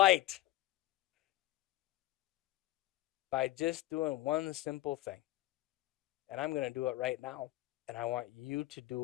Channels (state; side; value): quieter; right; 16.5 dB